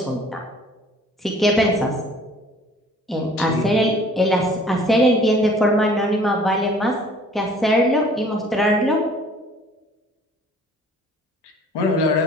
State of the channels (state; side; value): normal; both; correlation 0.53